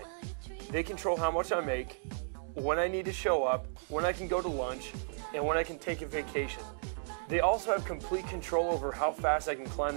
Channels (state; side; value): silent; left; digital silence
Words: They control how much I make, when I need to show up, when I can go to lunch, and when I can take a vacation. They also have complete control over how fast I can climb